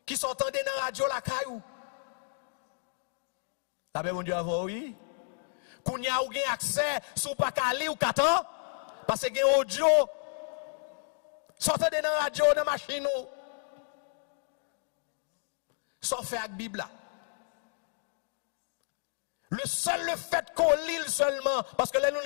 Qui s'entendait dans la radio la caillou? La paix, mon Dieu, avant, oui. Qu'on y a accès, sous pas calé ou katan, parce que y a audio, sortez dans la radio, dans la machine, sans faire avec la Bible. Le fait qu'on lit seulement, parce que là, nous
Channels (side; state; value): right; silent; digital silence